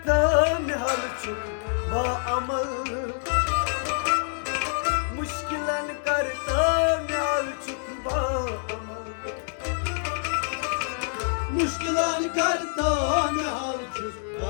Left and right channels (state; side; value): silent; right; 61 dB below the other